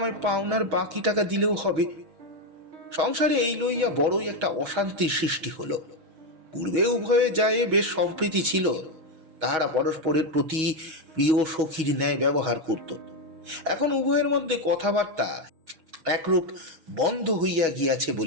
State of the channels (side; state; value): left; late; 6.3 ms